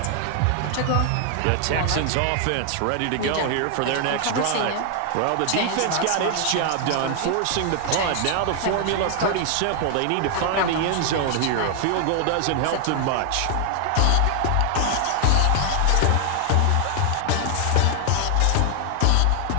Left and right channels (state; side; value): different; both; correlation 0.00